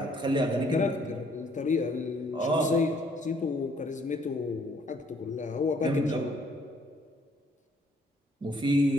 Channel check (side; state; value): both; normal; correlation 0.64